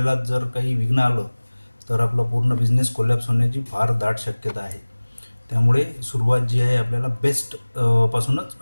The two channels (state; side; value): inverted; both; correlation -1.00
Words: जर काही विघ्न आलं तर आपला पूर्ण बिझनेस कोलॅप्स होण्याची फार दाट शक्यता आहे. त्यामुळे सुरुवात जी आहे आपल्याला बेस्ट